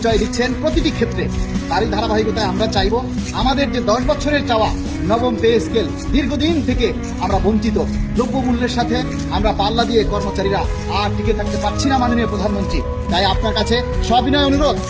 দিচ্ছেন প্রতিটি ক্ষেত্রে। তারই ধারাবাহিকতায় আমরা চাইব আমাদের যে 10 বছরের চাওয়া নবম পে স্কেল, দীর্ঘদিন থেকে আমরা বঞ্চিত, দ্রব্যমূল্যের সাথে আমরা পাল্লা দিয়ে কর্মচারীরা আর টিকে থাকতে পারছি না মাননীয় প্রধানমন্ত্রী। তাই আপনার কাছে সবিনয় অনুরোধ,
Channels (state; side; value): identical; both; correlation 1.00